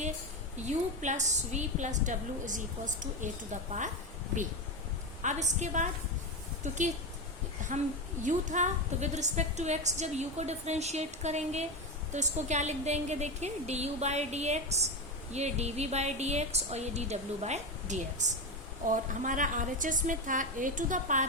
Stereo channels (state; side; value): normal; both; correlation 0.16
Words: u plus v plus w is equals to a to the power b। अब इसके बाद क्योंकि हम u था तो विद रिस्पेक्ट टू x जब u को डिफरेंशिएट करेंगे तो इसको क्या लिख देंगे, देखिए du/dx, ये dv/dx और ये dw/dx। और हमारा RHS में था a to the